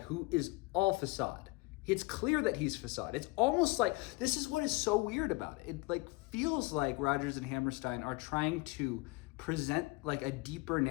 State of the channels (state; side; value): quieter; right; 23.1 dB